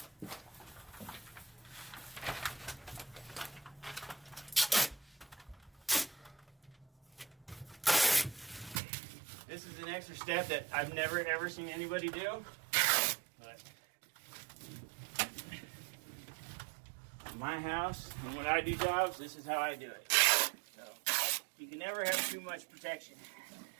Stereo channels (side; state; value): left; drops out; at 8.8 s